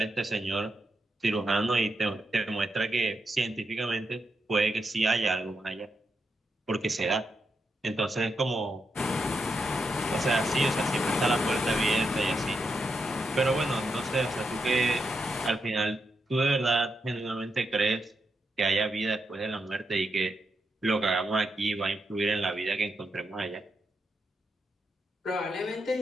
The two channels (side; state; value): both; normal; correlation 0.84